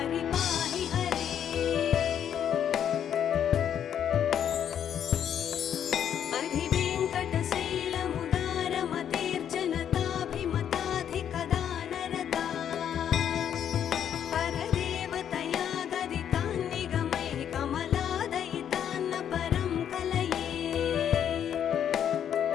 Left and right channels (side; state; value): right; quieter; 9.2 dB